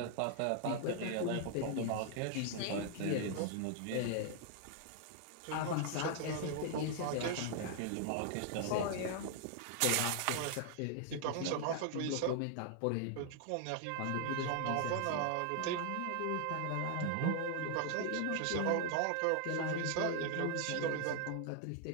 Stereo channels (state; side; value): different; both; correlation 0.00